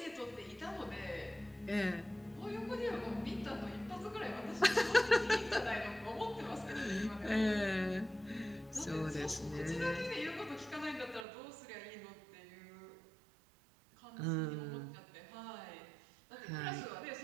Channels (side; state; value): left; drops out; at 11.2 s